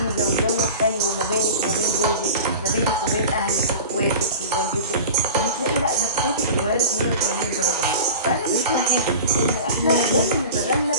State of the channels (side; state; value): both; inverted; correlation -0.35